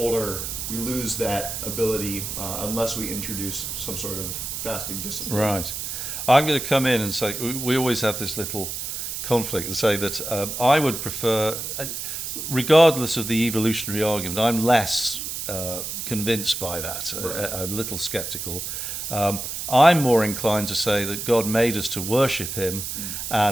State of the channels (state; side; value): noise; right; hiss, 5 dB below the sound